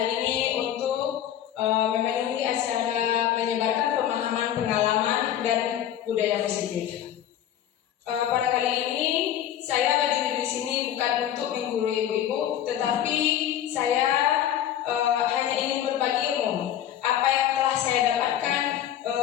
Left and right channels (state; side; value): quieter; right; 10.8 dB